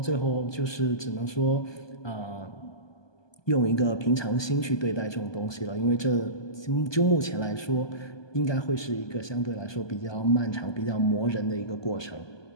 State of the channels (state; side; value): late; right; 1.2 ms